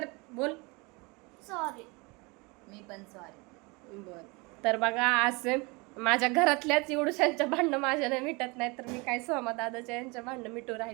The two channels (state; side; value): quieter; left; 27.3 dB